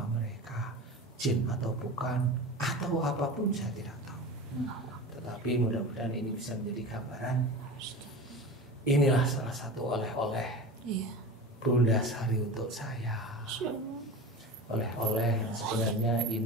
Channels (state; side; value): normal; both; correlation 0.31